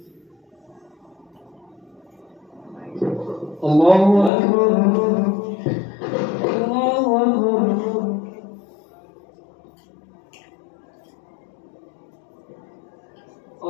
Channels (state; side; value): drops out; right; at 4.3 s